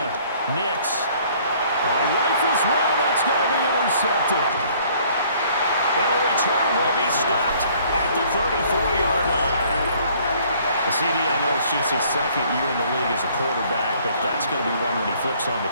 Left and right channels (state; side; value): inverted; both; correlation -0.58